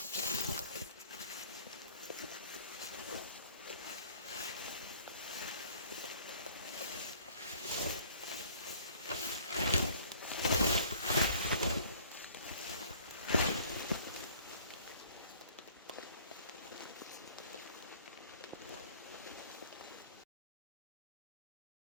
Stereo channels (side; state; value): both; inverted; correlation -0.53